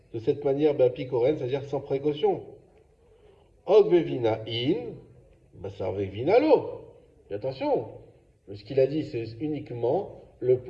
de cette manière Beapikoren, c'est-à-dire sans précaution. Og Vegvina in, Basar Vegvina lo. Et attention, ce qu'il a dit, c'est uniquement le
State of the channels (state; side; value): identical; both; correlation 1.00